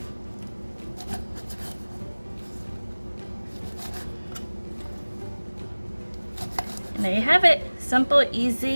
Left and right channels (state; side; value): inverted; both; correlation -1.00